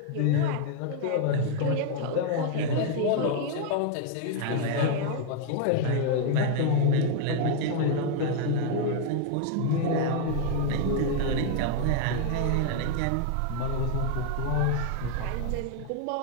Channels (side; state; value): both; different; correlation 0.00